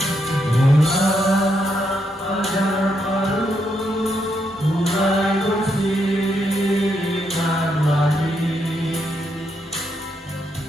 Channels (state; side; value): normal; both; correlation 0.79